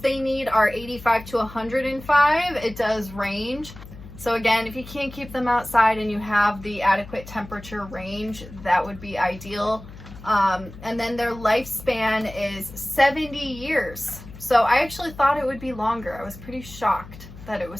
need are 85 to 105. It does range. So again, if you can't keep them outside and you have the adequate temperature range, that would be ideal. And then their lifespan is 70 years. So I actually thought it would be longer. I was pretty shocked that it was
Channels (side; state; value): left; noise; hum, 16 dB below the sound